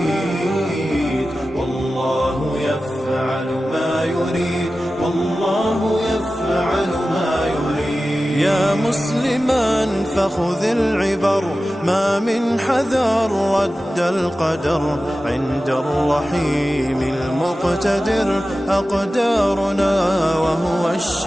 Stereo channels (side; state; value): both; normal; correlation 0.95